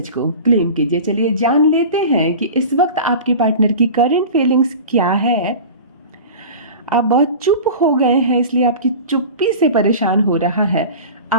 को क्लेम कीजिए। चलिए जान लेते हैं कि इस वक्त आपके पार्टनर की करंट फीलिंग्स क्या है। आप बहुत चुप हो गए हैं, इसलिए आपकी चुप्पी से परेशान हो रहा है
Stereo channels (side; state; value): both; inverted; correlation -0.35